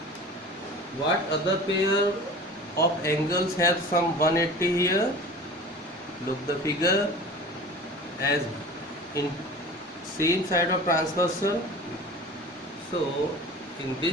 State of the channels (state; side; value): normal; both; correlation 0.38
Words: what other pair of angles have some 180 here? Look the figure, as in same side of transversal, so in